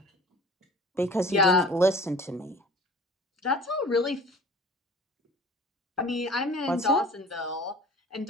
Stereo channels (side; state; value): both; normal; correlation 0.44